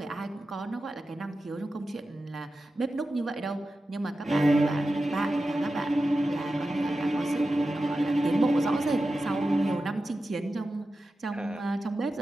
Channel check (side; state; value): both; normal; correlation 0.93